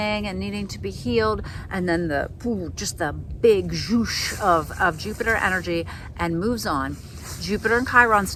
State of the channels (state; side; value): identical; both; correlation 1.00